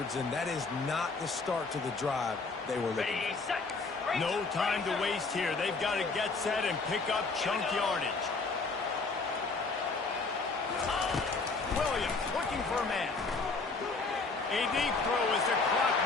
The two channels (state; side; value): quieter; right; 4.0 dB